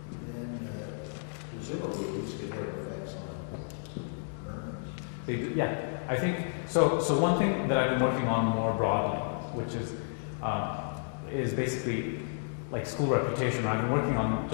Then presumably these could have effects on earnings. They do, yeah. I think so. One thing that I've been working on more broadly, which is basically like school reputation. I've been working on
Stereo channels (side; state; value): right; silent; digital silence